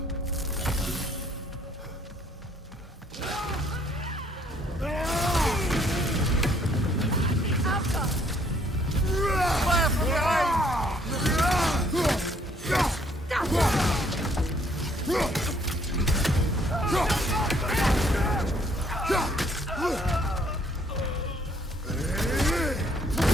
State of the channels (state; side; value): normal; both; correlation 0.65